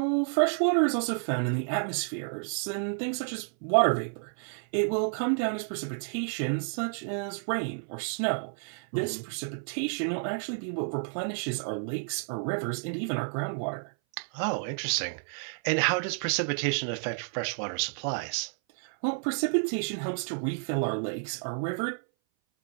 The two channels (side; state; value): left; silent; 58 dB below the other